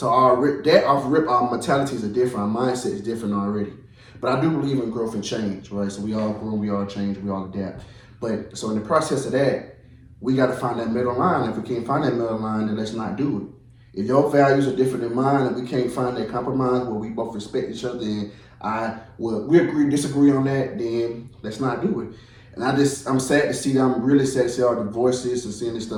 our mentalities are different, our mindset is different already. But I do believe in growth and change, right? So we all grow, we all change, we all adapt. But so in the process of that, we got to find that middle line. If we can't find that middle line, then let's not do it. If your values are different than mine and we can't find that compromise where we both respect each other and we disagree on that, then let's not do it. And I'm sad to see that. I'm really sad to see all the divorces and seeing this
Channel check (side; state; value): both; identical; correlation 1.00